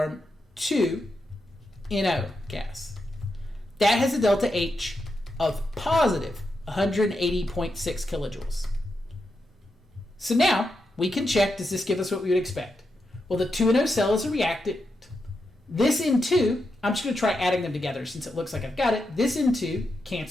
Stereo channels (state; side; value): normal; both; correlation 0.86